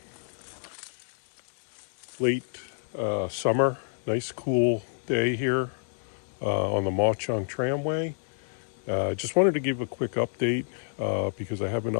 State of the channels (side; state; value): right; silent; digital silence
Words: late summer, nice cool day here on the MAUCH Tramway. Just wanted to give a quick update because I haven't